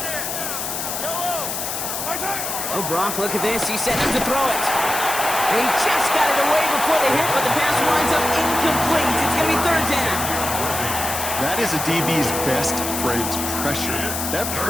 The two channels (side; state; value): left; noise; hiss, 4 dB below the sound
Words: Oh, Brock, look at this. He set him to throw it. And he just got it away before the hit, but the pass winds up incomplete. It's going to be 3rd down. That is a DB's best friend, pressure. That